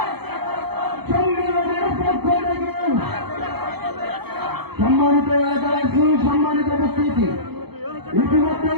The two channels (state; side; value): late; left; 0.97 ms